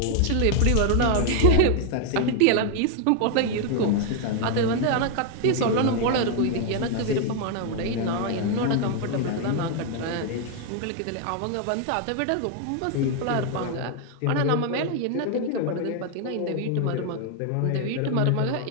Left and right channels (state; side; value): different; both; correlation 0.00